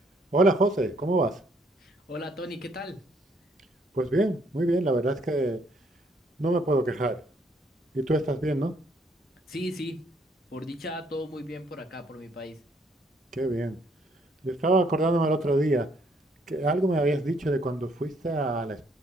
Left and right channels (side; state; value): both; normal; correlation 0.68